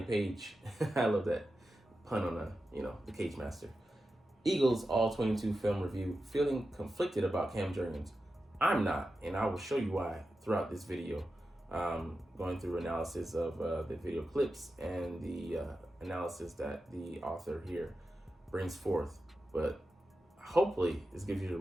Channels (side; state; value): both; normal; correlation 0.91